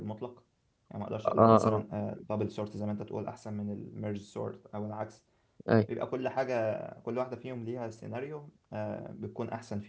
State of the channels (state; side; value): identical; both; correlation 1.00